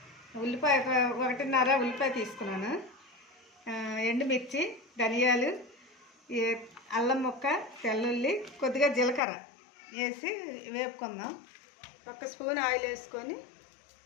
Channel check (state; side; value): drops out; right; at 9.2 s